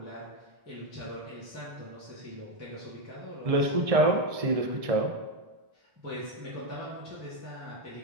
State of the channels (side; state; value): left; late; 1.6 ms